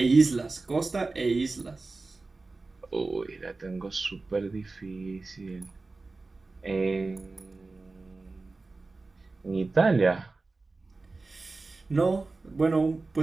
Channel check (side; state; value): left; quieter; 3.6 dB